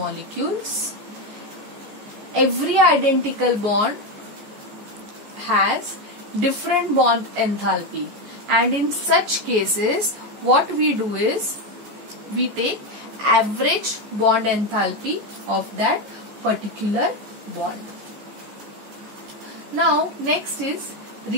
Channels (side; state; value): left; late; 14 ms